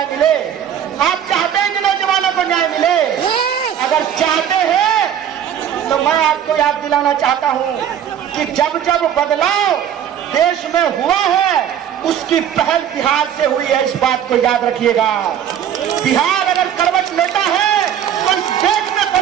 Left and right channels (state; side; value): quieter; left; 9.5 dB